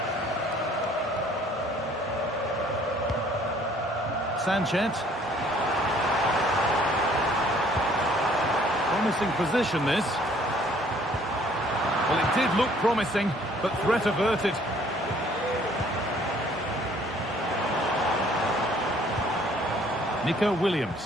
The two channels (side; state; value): both; normal; correlation 0.59